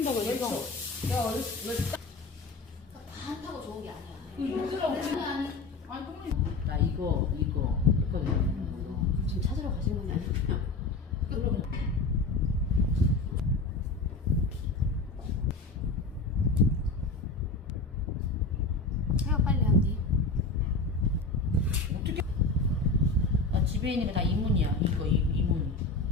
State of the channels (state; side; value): quieter; right; 3.6 dB